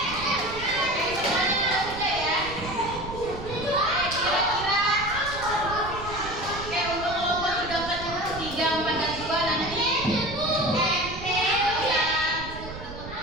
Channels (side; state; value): right; noise; rumble, 11 dB below the sound